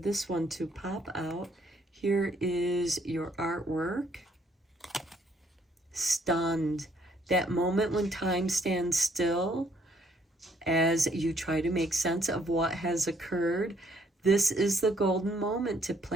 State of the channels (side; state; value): both; normal; correlation 0.66